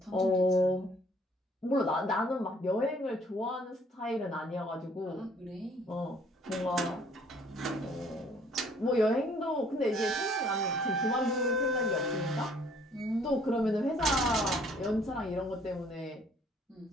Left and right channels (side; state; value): both; normal; correlation 0.60